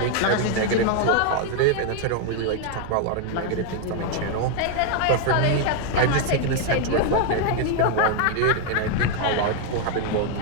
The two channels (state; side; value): different; both; correlation 0.01